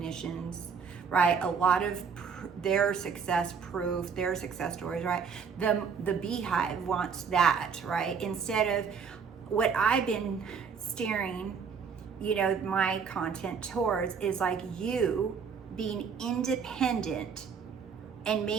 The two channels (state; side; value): quieter; left; 6.2 dB